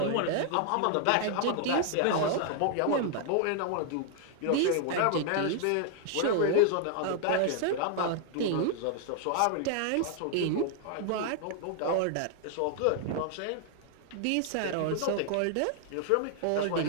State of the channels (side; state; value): both; different; correlation 0.00